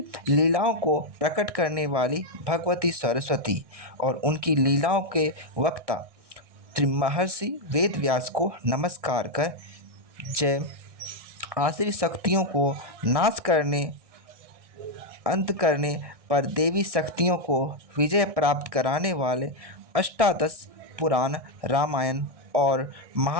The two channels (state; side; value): late; left; 1.6 ms